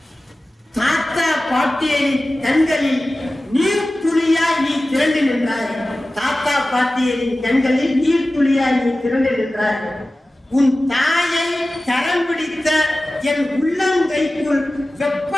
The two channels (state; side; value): normal; both; correlation 0.96